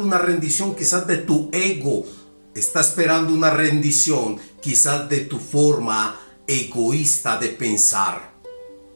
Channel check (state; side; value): inverted; both; correlation -1.00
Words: una rendición quizás de tu ego. Está esperando una rendición quizás de tu forma egoísta de pensar.